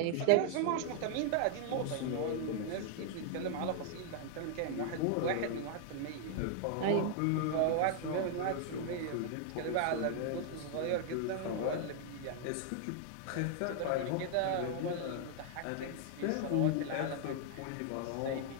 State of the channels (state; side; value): different; both; correlation 0.00